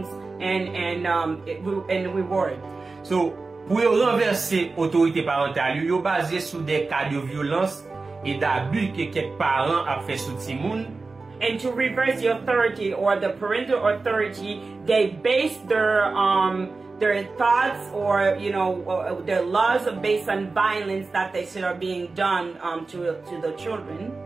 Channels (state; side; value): quieter; left; 3.9 dB